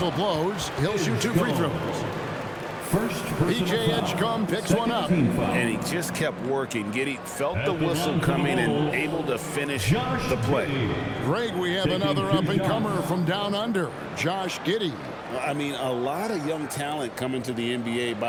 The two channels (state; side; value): identical; both; correlation 1.00